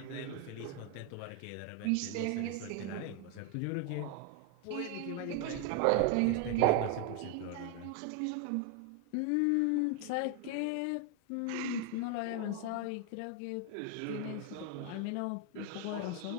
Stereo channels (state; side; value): different; both; correlation 0.01